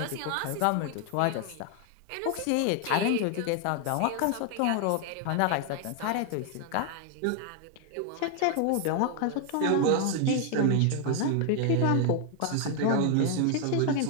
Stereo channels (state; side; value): different; both; correlation 0.00